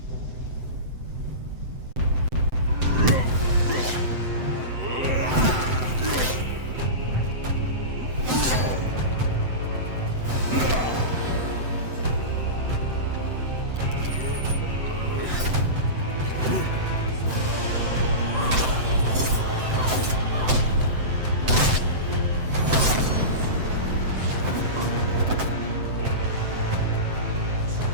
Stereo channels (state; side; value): late; left; 7.8 ms